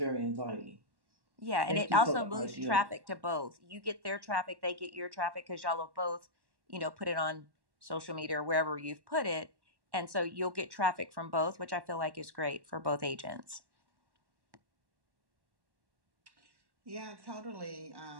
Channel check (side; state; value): left; late; 1.1 ms